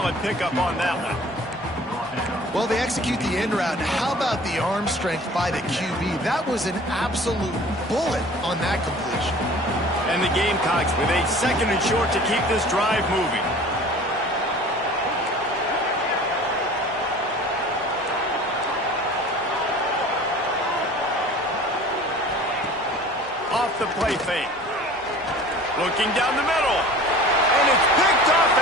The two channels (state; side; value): normal; both; correlation 0.45